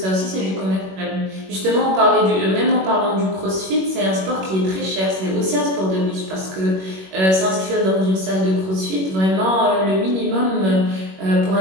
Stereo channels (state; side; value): late; left; 21 ms